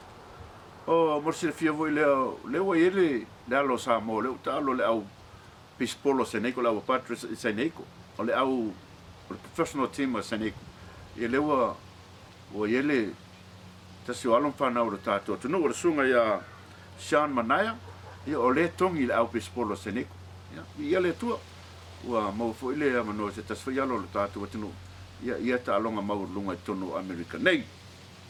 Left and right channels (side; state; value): both; identical; correlation 1.00